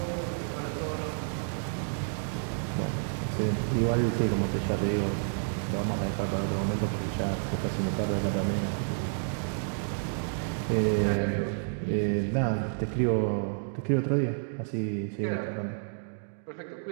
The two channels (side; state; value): left; silent; digital silence